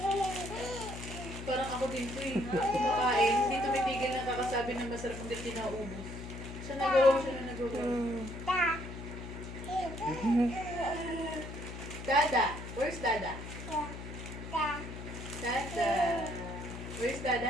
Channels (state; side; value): noise; left; hum, 9 dB below the sound